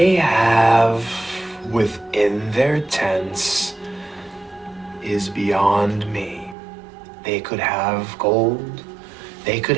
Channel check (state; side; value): drops out; left; at 6.6 s